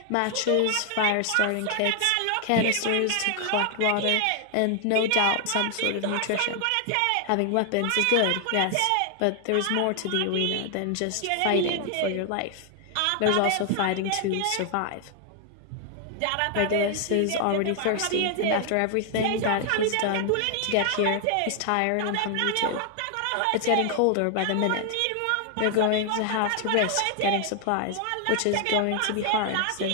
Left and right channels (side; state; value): both; different; correlation 0.00